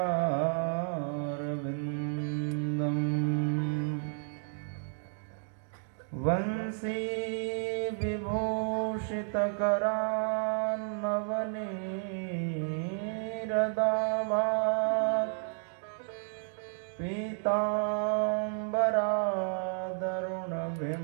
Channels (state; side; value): silent; left; 56 dB below the other